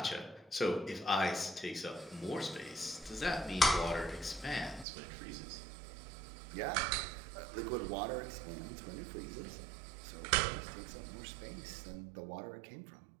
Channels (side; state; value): left; drops out; at 4.9 s